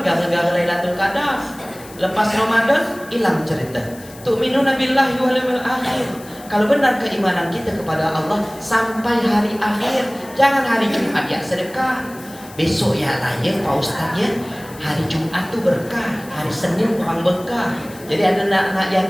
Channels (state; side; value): noise; left; hiss, 20 dB below the sound